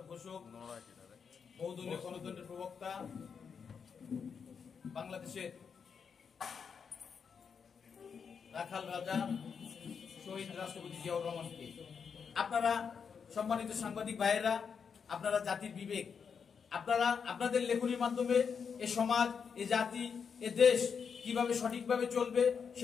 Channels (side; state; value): right; quieter; 6.4 dB